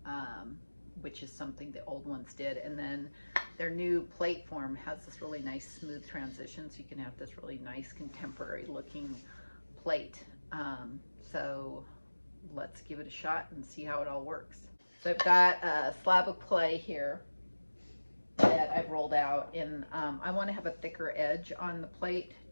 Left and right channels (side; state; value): both; inverted; correlation -1.00